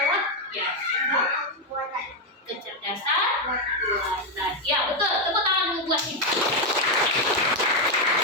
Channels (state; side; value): normal; both; correlation 0.04